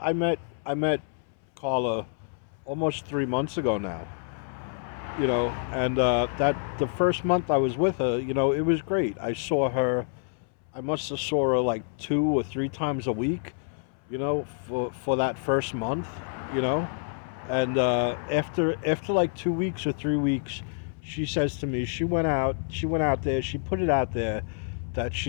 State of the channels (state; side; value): silent; right; 60 dB below the other